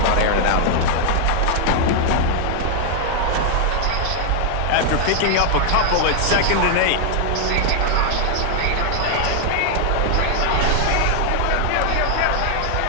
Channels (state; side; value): different; both; correlation 0.00